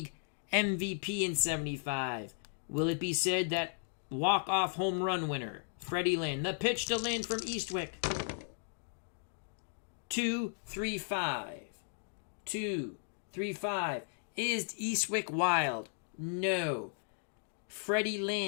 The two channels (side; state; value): right; silent; digital silence